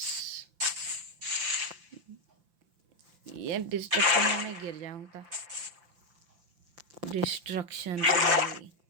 ये डिस्ट्रक्शन में गिर जाऊंगा। डिस्ट्रक्शन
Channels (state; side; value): late; left; 5.8 ms